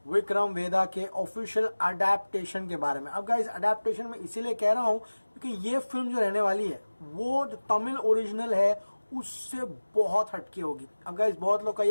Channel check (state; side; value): inverted; both; correlation -1.00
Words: विक्रम वेदा के ऑफिशियल अडेप्टेशन के बारे में। अब गाइस, अडेप्टेशन में इसीलिए कह रहा हूँ क्योंकि ये फिल्म जो रहने वाली है वो जो तमिल ओरिजिनल है उससे बहुत हटके होगी। अब गाइस, बहुत लोग का